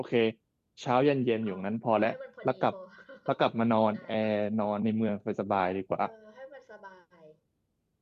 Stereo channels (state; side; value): identical; both; correlation 1.00